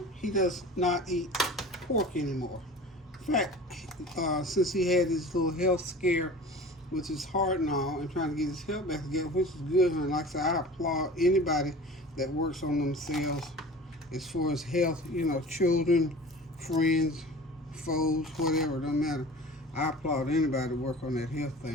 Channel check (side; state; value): both; normal; correlation 0.39